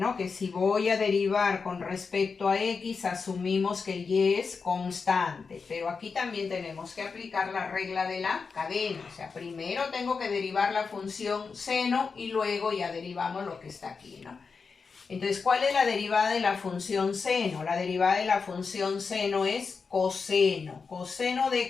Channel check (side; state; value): right; quieter; 5.1 dB